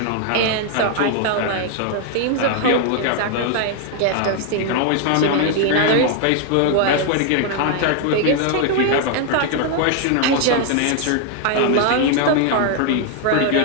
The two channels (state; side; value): different; both; correlation 0.00